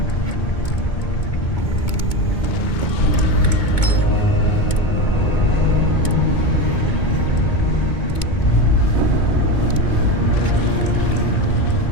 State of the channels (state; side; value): late; right; 2.2 ms